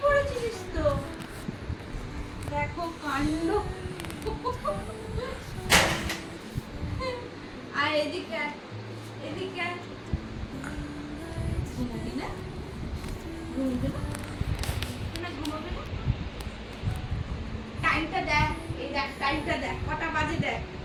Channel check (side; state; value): both; identical; correlation 1.00